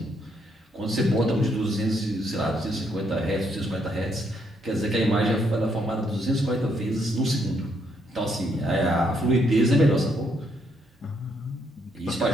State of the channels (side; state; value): both; normal; correlation 0.74